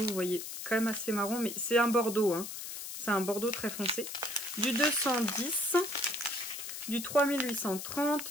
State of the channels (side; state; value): left; noise; hiss, 8 dB below the sound